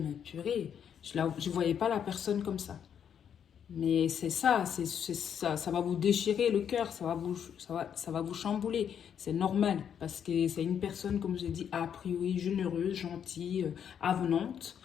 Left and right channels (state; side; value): quieter; right; 8.4 dB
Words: purée, je ne voyais pas la personne comme ça. Mais c'est ça, ça va vous déchirer le cœur, ça va vous chambouler. C'est normal, parce que c'est une personne, comme je l'ai dit, a priori généreuse, gentille, avenante.